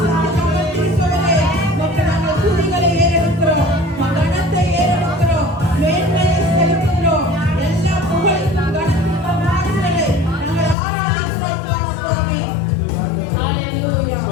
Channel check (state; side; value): drops out; right; at 10.8 s